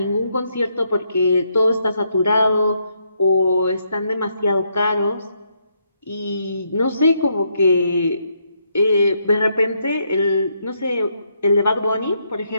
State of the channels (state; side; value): inverted; both; correlation -0.76